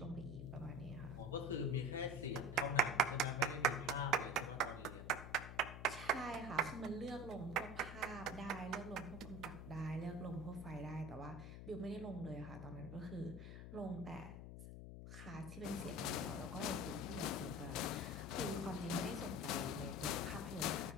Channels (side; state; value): left; noise; hum, 9 dB below the sound